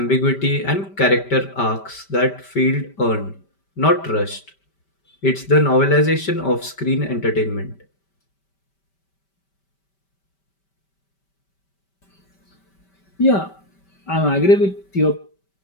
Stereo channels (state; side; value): late; right; 5.1 ms